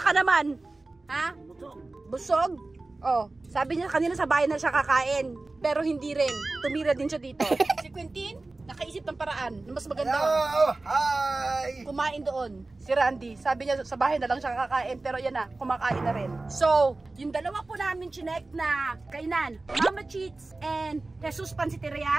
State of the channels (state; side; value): quieter; left; 3.2 dB